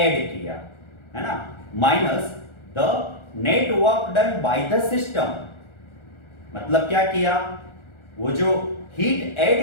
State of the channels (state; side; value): late; right; 1.4 ms